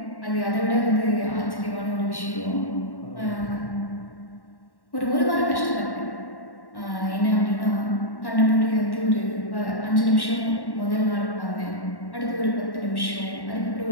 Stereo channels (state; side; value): late; right; 1.1 ms